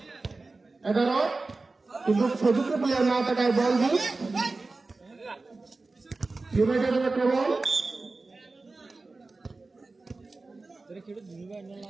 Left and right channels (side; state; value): left; quieter; 3.6 dB